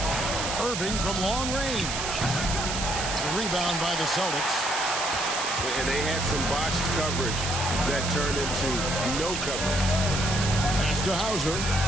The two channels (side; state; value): right; noise; hiss, 3 dB below the sound